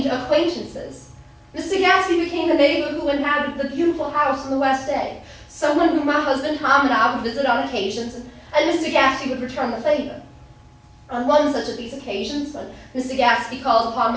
acquaintances. Mr. Gatsby became a neighbor who inhabited the beautiful house in the West Egg, someone whom my husband Tom and I would visit on occasions, and Mr. Gatsby would return the favor. On one such of these occasions, when Mr. Gatsby called upon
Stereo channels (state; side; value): identical; both; correlation 1.00